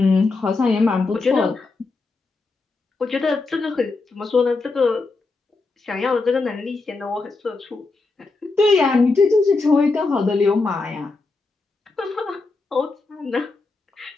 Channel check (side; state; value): right; quieter; 3.7 dB